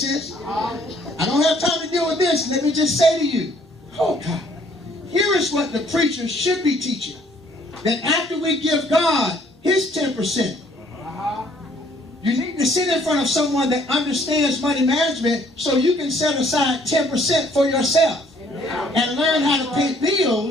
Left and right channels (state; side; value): normal; both; correlation 0.62